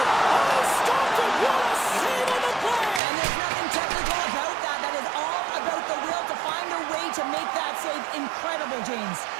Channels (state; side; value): drops out; left; at 3.0 s